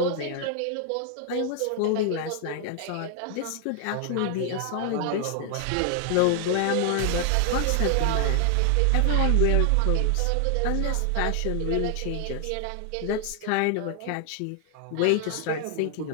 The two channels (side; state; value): both; different; correlation 0.00